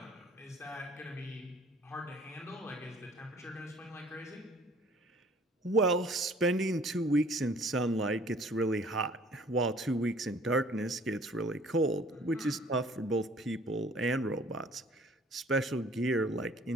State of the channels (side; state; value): both; normal; correlation 0.54